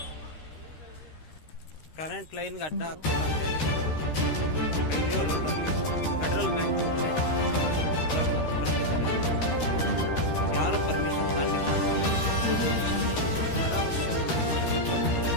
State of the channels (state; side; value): late; right; 13 ms